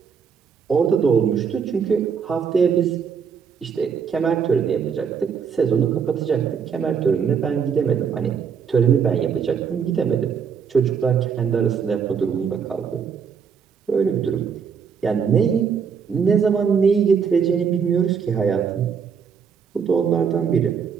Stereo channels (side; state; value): left; quieter; 6.7 dB